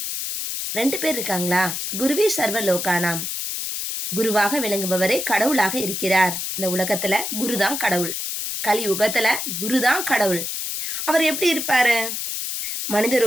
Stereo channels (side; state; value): left; noise; hiss, 4 dB below the sound